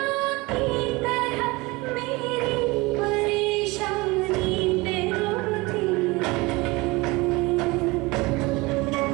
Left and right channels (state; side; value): quieter; left; 23.4 dB